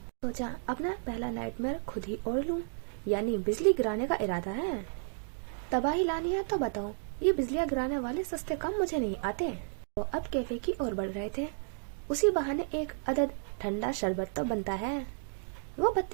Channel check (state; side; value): silent; left; digital silence